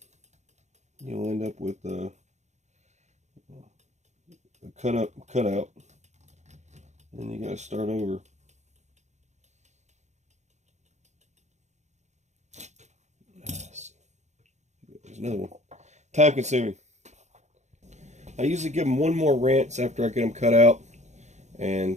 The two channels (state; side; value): late; left; 0.33 ms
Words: you'll end up with a cutout, and you gotta start over. There's another one. Time consuming. I usually give them one more rinse after I get them cut out,